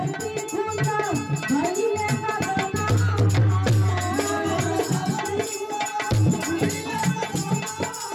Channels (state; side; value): identical; both; correlation 1.00